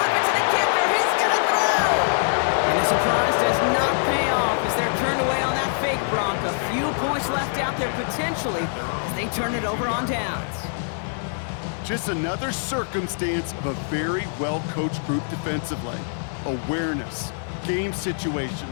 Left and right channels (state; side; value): silent; right; digital silence